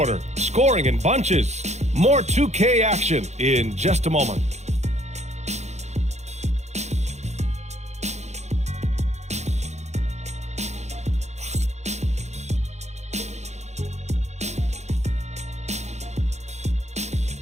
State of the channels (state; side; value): late; left; 0.33 ms